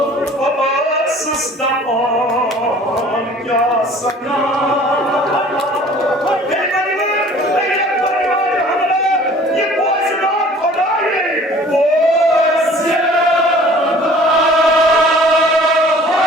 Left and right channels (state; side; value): normal; both; correlation 0.49